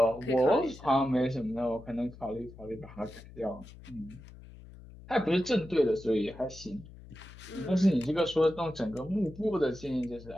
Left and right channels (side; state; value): left; noise; hum, 18 dB below the sound